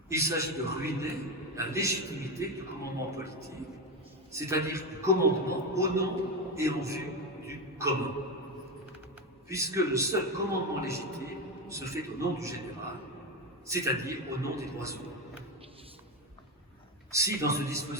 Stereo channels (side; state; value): both; normal; correlation 0.13